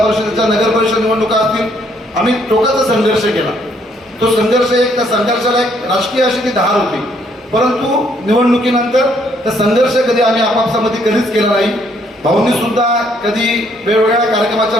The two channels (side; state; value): both; normal; correlation 0.68